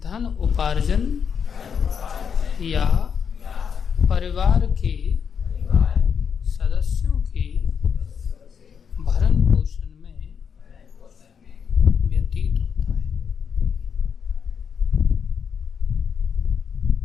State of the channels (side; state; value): right; quieter; 7.0 dB